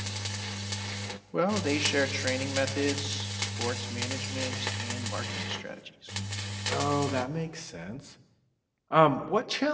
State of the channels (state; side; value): identical; both; correlation 1.00